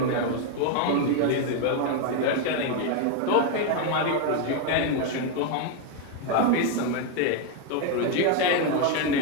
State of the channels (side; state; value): both; different; correlation 0.01